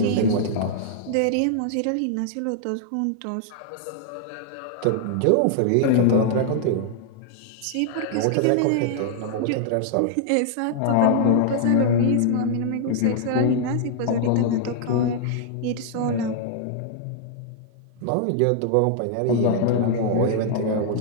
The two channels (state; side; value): different; both; correlation -0.01